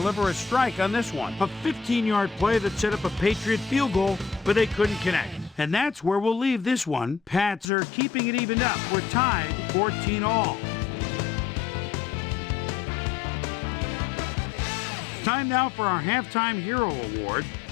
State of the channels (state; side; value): drops out; right; at 7.7 s